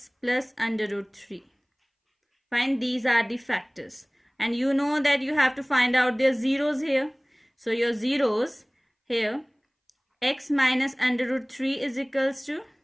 plus under root 3. Fine, these are the factors. And you know that you have to find out their zeros here. So your zeros here, x minus under root 3 is equals to,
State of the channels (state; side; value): identical; both; correlation 1.00